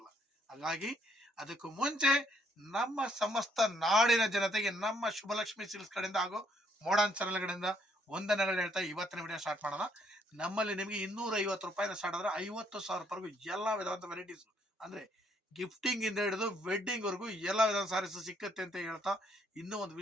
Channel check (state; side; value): normal; both; correlation 0.69